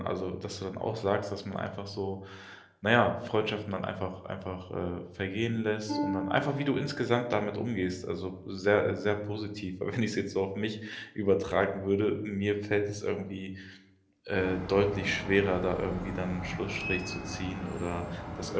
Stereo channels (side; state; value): both; identical; correlation 1.00